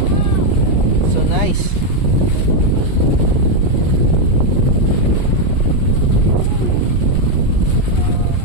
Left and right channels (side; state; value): right; late; 8.2 ms